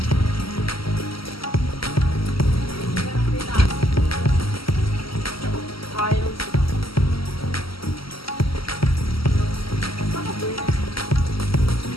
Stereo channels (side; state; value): right; late; 0.75 ms